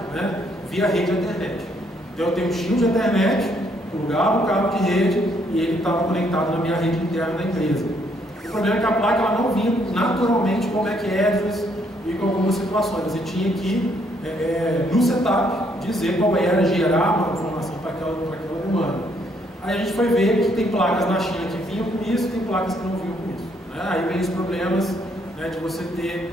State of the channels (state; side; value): normal; both; correlation 0.70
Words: né, via rede internet. Então eu tenho um shield de internet, plugava o cabo de rede e ele estava conectado na minha rede interna da empresa. O problema é que a placa ela não vinha naturalmente com back address e com algumas situações. Você tinha que, no setup, dizer qual era, gerar uma informação para aquela demanda. Aí a gente foi ver que tem placas na China que vinham com isso e tem placas que não vinham com isso. Né? Aí vem os problemas, né, de você